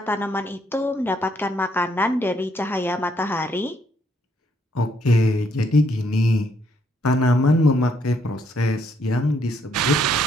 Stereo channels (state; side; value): normal; both; correlation 0.71